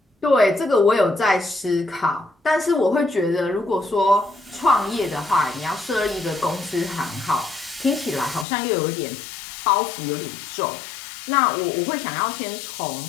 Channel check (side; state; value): right; drops out; at 8.5 s